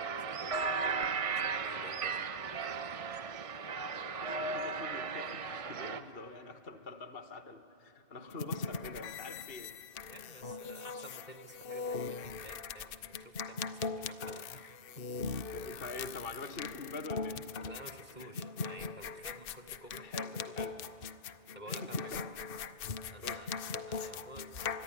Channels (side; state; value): right; late; 2.6 ms